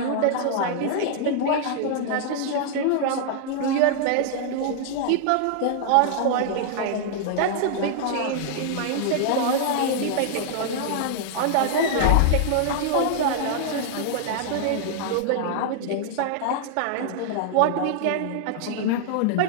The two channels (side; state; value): both; different; correlation -0.01